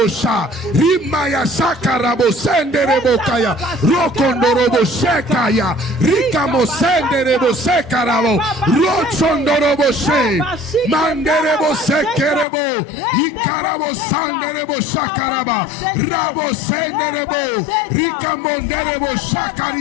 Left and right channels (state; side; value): drops out; right; at 12.5 s